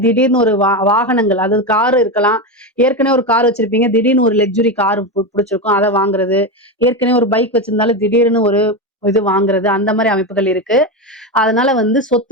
திடீர்னு ஒரு வாகனங்கள், அதாவது கார் இருக்கலாம். ஏற்கனவே ஒரு கார் வச்சிருப்பீங்க, திடீர்னு ஒரு லக்ஸுரி கார் பிடிச்சிருக்கும், அதை வாங்குறது. ஏற்கனவே ஒரு பைக் வச்சிருந்தாலும் திடீர்னு ஒரு இது வாங்குறது, அந்த மாதிரி அமைப்புகள் இருக்கு. அதனால வந்து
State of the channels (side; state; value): both; normal; correlation 0.15